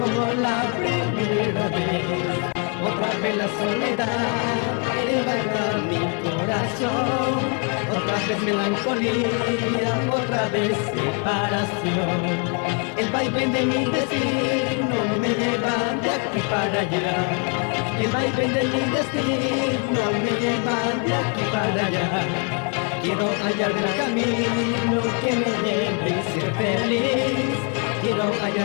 la primera vez. Otra vez la soledad invadió mi corazón. Otra vez melancolía, otra vez separación. El vaivén de mi destino me lleva de aquí para allá. El vaivén de mi destino me lleva de aquí para allá. Quiero hallar el camino que me lleve a ser feliz. Quiero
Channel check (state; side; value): quieter; right; 37.9 dB